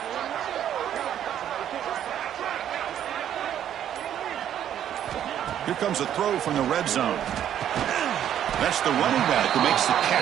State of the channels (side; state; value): left; quieter; 10.3 dB